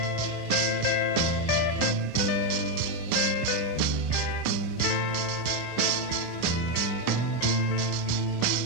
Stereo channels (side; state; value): right; late; 25 ms